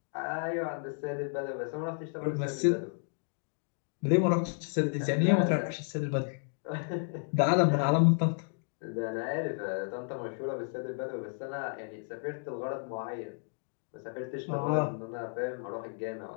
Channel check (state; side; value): silent; right; 56 dB below the other